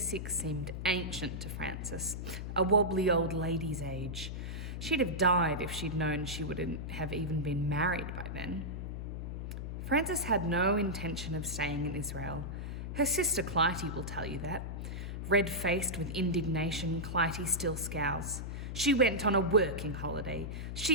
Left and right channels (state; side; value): noise; left; hum, 5 dB below the sound